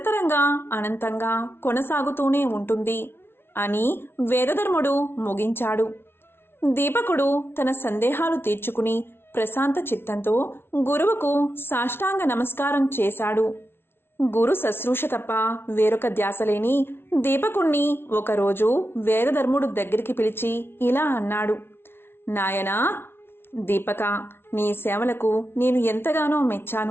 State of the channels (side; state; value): right; late; 0.11 ms